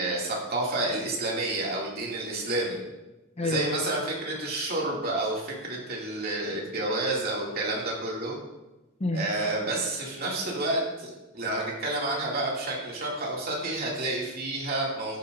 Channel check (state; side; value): normal; both; correlation -0.01